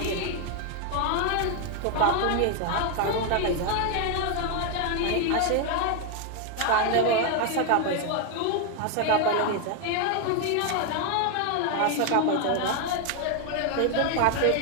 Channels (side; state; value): both; different; correlation 0.01